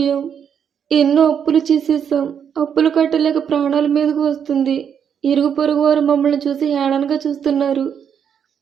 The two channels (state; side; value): quieter; left; 7.9 dB